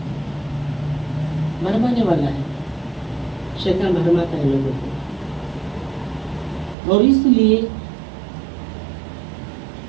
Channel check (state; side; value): drops out; left; at 6.8 s